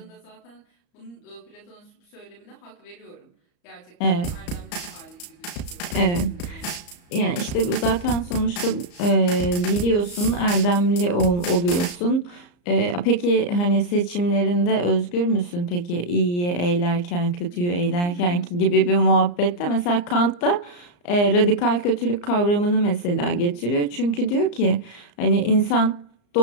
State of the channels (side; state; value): right; late; 34 ms